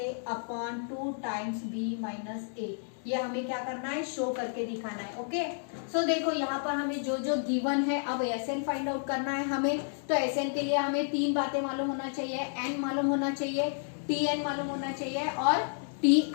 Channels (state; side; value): silent; right; digital silence